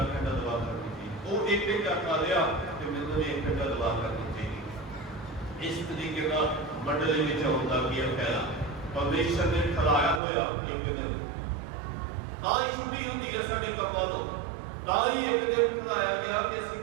ਘੰਟਾ ਦੁਆ ਕਰਨੀ ਚਾਹੀਦੀ। ਉਹ ਇੱਕ ਘੰਟਾ ਕਰ ਲਿਆ ਤੇ ਮੈਨੂੰ ਵੀ 1 ਘੰਟਾ ਦੁਆ ਕਰਨੀ ਚਾਹੀਦੀ। ਇਸ ਤਰੀਕੇ ਨਾਲ ਮੰਡਲੀ ਵਿੱਚ ਹੁੰਦਾ ਕੀ ਫਾਇਦਾ। ਪਰਮੇਸ਼ਰ ਨੇ ਠਹਿਰਾਇਆ ਹੋਇਆ ਇੱਕ ਦਿਨ, ਤਾਂ ਹੀ ਛੁੱਟੀ ਹੁੰਦੀ ਹੈ ਸਾਡੇ ਕੰਮਾਂ ਤੋਂ। ਤਾਂ ਹੀ ਇੱਕ ਦਿਨ ਠਹਿਰਾਇਆ ਗਿਆ ਕਿ ਅਸੀਂ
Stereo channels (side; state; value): left; drops out; at 10.2 s